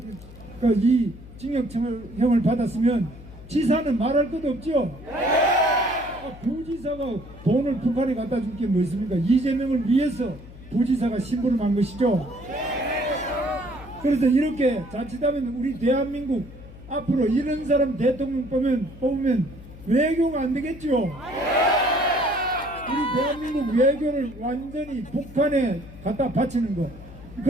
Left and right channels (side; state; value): left; noise; hum, 17 dB below the sound